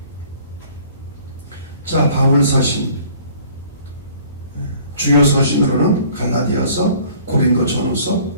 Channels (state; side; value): inverted; both; correlation -0.54